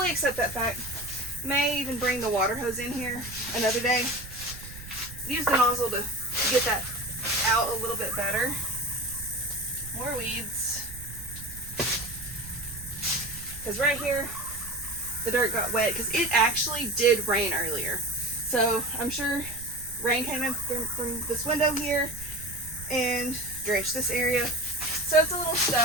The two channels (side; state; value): right; noise; rumble, 15 dB below the sound